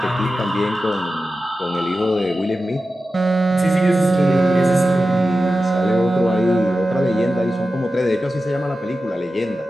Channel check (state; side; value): normal; both; correlation 0.93